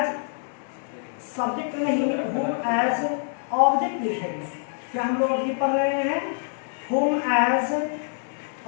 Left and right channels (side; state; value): right; silent; digital silence